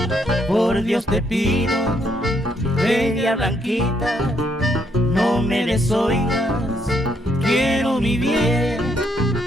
Por Dios te pido, bella blanquita, no me desoigas, quiero mi bien.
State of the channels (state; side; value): normal; both; correlation 0.73